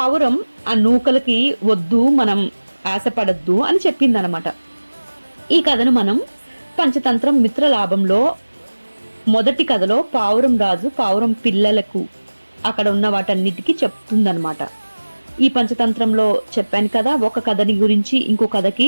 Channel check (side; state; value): both; inverted; correlation -1.00